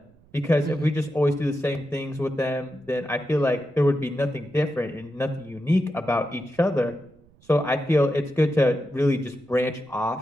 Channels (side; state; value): right; noise; rumble, 29 dB below the sound